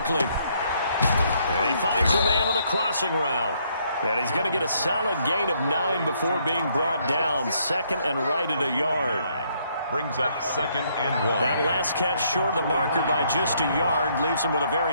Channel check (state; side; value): inverted; both; correlation -0.70